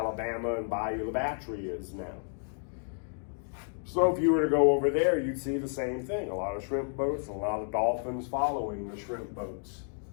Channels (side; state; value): right; silent; 57 dB below the other